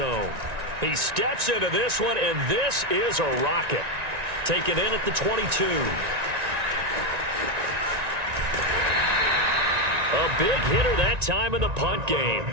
He steps into this one, and this is a rocket. Taken in at the 22. A big hitter that time in the punt game.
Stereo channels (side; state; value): left; late; 1.9 ms